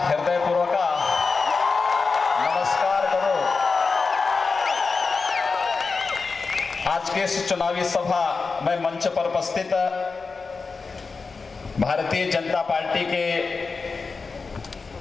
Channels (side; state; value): right; quieter; 4.5 dB